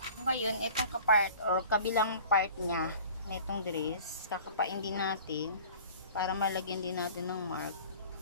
Ngayon, itong kapart o kabilang part niya na itong dress, kakapain din natin para malagyan din natin ng mark.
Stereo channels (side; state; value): both; inverted; correlation -0.45